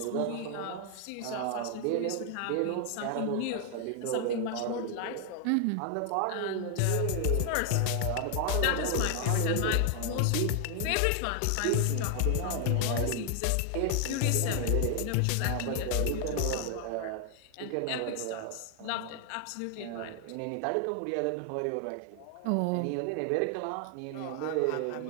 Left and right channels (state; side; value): different; both; correlation 0.00